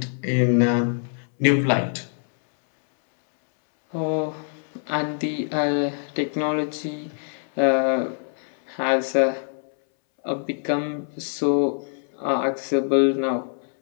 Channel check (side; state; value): right; silent; 63 dB below the other